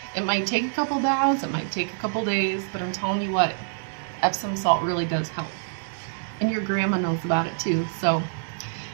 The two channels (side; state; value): left; silent; 61 dB below the other